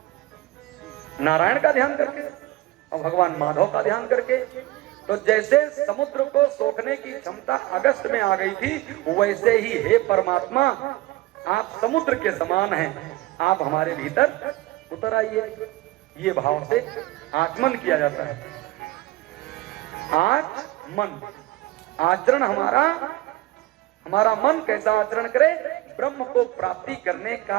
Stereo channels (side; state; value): left; quieter; 17.9 dB